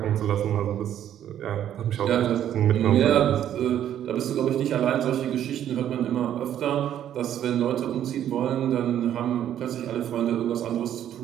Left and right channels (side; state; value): left; quieter; 10.7 dB